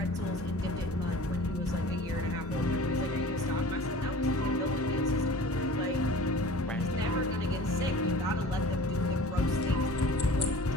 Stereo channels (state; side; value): normal; both; correlation 0.42